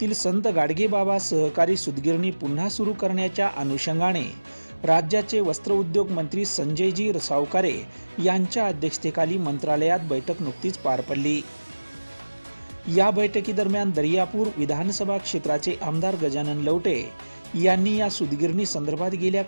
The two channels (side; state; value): both; inverted; correlation -1.00